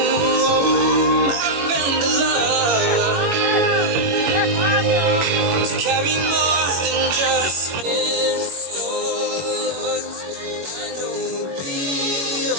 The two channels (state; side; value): late; left; 21 ms